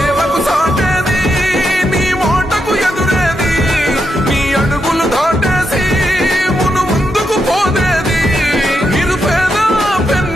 సాటేది నీ ఓటకు ఎదురేది నీ అడుగులు దాటేసి మును ముందుకు పోదేది నిరుపేద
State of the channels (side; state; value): both; normal; correlation 0.83